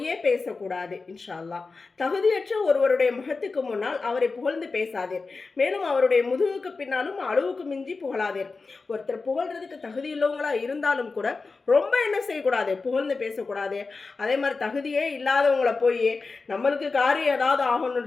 பேசக்கூடாது இன்ஷா அல்லாஹ். தகுதியற்ற ஒருவருடைய முகத்துக்கு முன்னால் அவரை புகழ்ந்து பேசாதீர். மேலும் அவருடைய முதுகுக்கு பின்னாலும் அளவுக்கு மிஞ்சி புகழாதீர். ஒருத்தர் புகழ்றதுக்கு தகுதி உள்ளவங்களா இருந்தாலும் கூட ரொம்ப என்ன செய்யக்கூடாது, புகழ்ந்து பேசக்கூடாது. அதே மாதிரி தகுதியே இல்லாதவங்களை போய் நம்மளுக்கு காரியம் ஏதாவது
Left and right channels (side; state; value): right; quieter; 4.1 dB